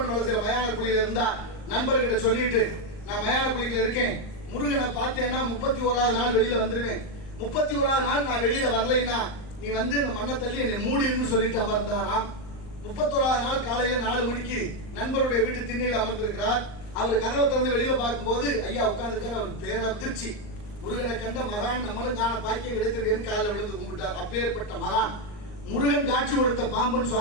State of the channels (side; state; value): right; late; 38 ms